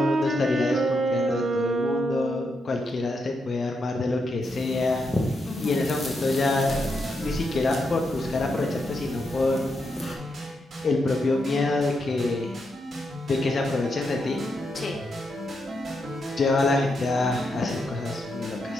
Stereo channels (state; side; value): normal; both; correlation 0.82